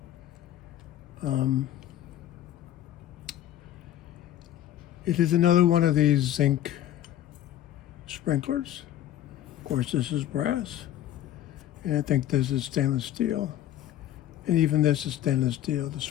It is another one of these zinc sprinklers. Of course, this is brass, and I think this is stainless steel. And even this is stainless steel. The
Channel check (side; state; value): right; quieter; 12.4 dB